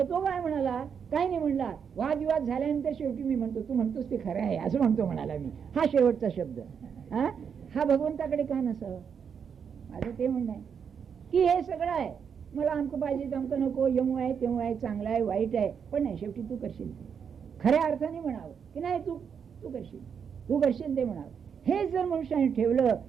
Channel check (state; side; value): quieter; left; 7.0 dB